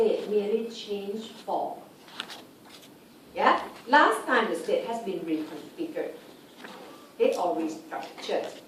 merely changed form. Yeah? Last time the state has been reconfigured, okay, or restructured,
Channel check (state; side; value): identical; both; correlation 1.00